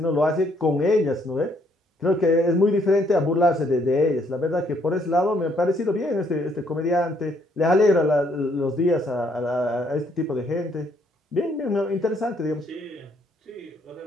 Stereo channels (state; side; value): normal; both; correlation 0.69